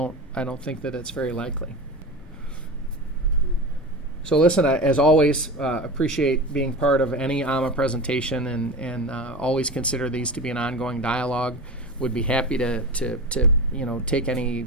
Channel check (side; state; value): both; normal; correlation 0.28